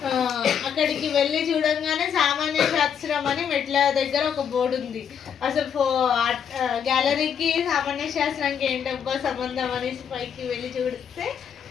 అక్కడికి వెళ్ళి చూడంగానే సామాన్య శాస్త్రం అని మెట్ల దగ్గర ఒక బోర్డు ఉంది. అసలు గ్యాలరీకి సామాన్య శాస్త్రానికి ఏంటబ్బా సంబంధం అని పైకి వెళ్ళి చూస్తే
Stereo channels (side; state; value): right; quieter; 7.9 dB